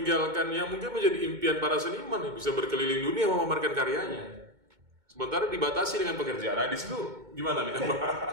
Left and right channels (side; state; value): left; late; 2.2 ms